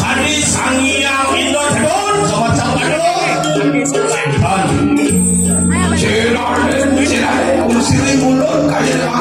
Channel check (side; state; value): both; identical; correlation 1.00